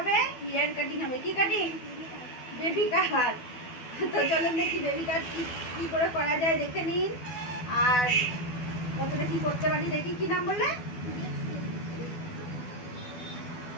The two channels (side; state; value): right; late; 12 ms